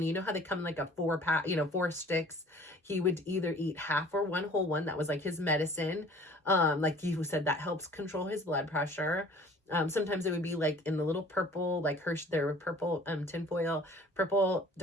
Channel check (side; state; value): both; normal; correlation 0.50